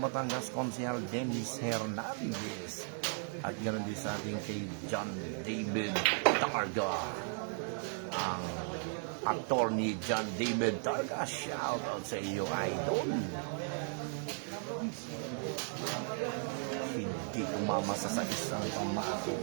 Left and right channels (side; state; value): left; silent; 54 dB below the other